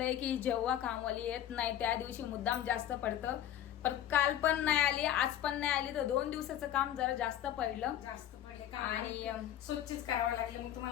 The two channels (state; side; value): quieter; right; 11.3 dB